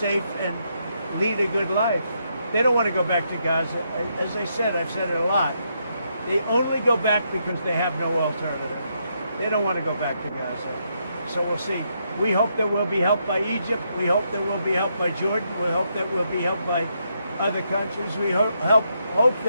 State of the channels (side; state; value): both; inverted; correlation -0.78